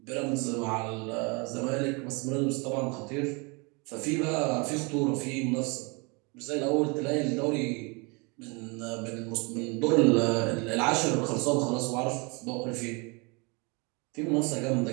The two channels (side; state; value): left; quieter; 30.0 dB